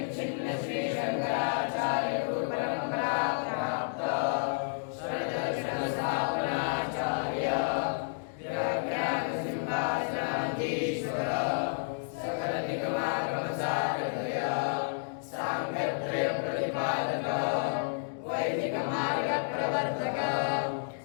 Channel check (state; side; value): silent; right; digital silence